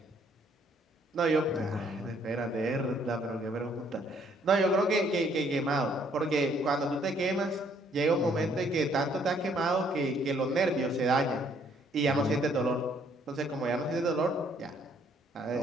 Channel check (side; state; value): both; normal; correlation 0.65